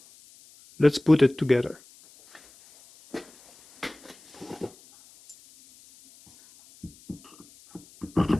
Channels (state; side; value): noise; left; hiss, 26 dB below the sound